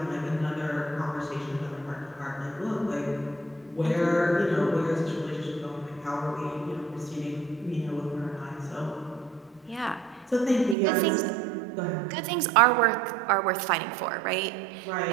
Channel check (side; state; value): left; drops out; at 10.8 s